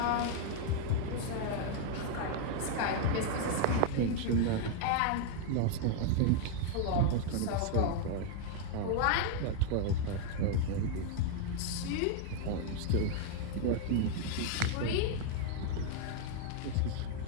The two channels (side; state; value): both; different; correlation 0.00